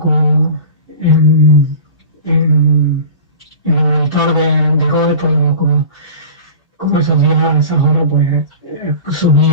en el monitor de Rode, pues como esos días, a esas horas, pues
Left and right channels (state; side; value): inverted; both; correlation -0.36